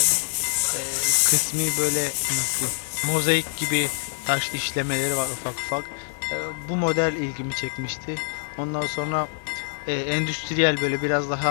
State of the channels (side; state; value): right; silent; 62 dB below the other